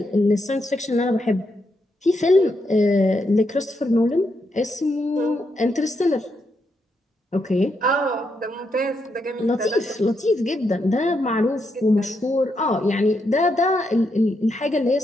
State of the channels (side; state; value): both; normal; correlation 0.81